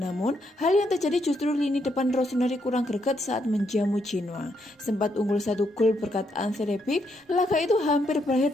hal yang terjadi justru lini depan Rossoneri kurang greget saat menjamu Genoa. Sempat unggul 1 gol berkat Ante Rebic, laga itu hampir berakhir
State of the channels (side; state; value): both; normal; correlation 0.77